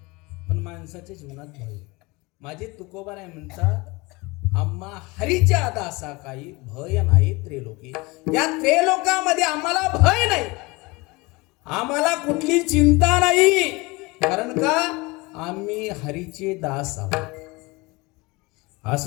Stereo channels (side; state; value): right; quieter; 24.4 dB